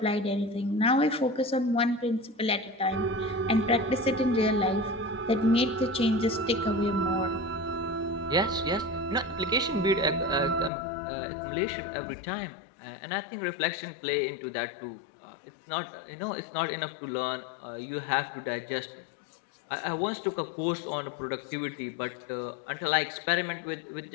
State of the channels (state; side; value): drops out; right; at 10.7 s